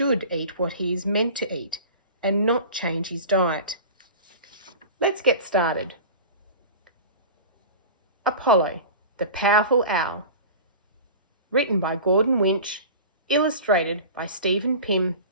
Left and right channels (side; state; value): both; inverted; correlation -0.35